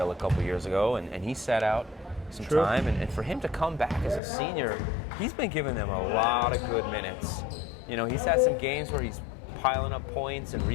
a couple years ago, and he sat out some True. time. And for him to come back as a senior, he's been giving them a lot of good minutes. You know, he's had some games where he's piling up points and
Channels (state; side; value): drops out; right; at 4.2 s